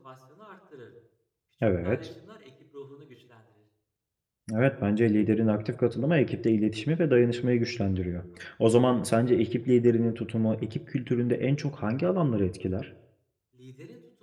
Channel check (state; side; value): identical; both; correlation 1.00